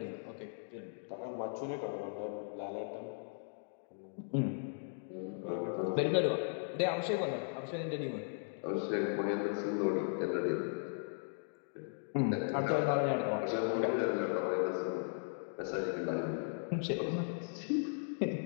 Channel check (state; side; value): silent; right; digital silence